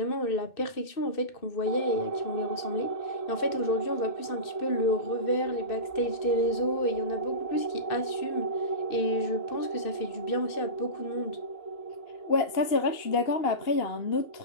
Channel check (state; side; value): late; right; 2.6 ms